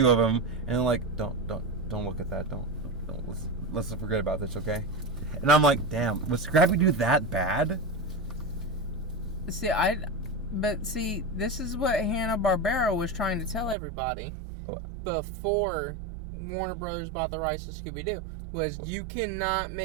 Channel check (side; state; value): left; drops out; at 13.8 s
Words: of him, and they're like, don't look at that, don't let's forget about this, okay? And I'm like, damn, was Scrappy Doo that bad? See, this is what Hanna-Barbera was trying to tell everybody before Warner Brothers bought the rights to Scooby-Doo. Was you cannot